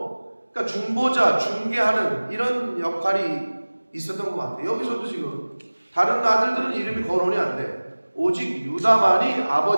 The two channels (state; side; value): inverted; both; correlation -1.00